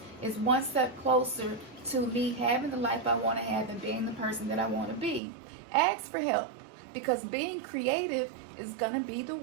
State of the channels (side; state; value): left; drops out; at 5.2 s